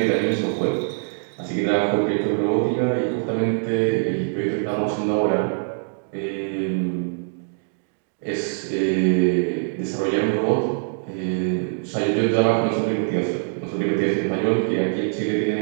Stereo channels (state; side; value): silent; left; digital silence